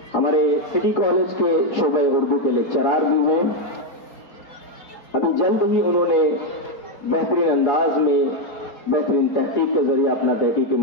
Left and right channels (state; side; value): late; right; 3.9 ms